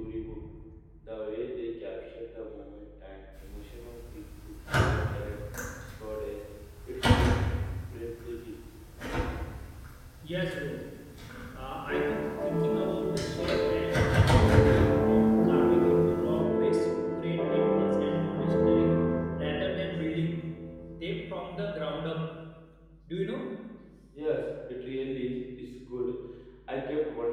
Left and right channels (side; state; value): both; identical; correlation 1.00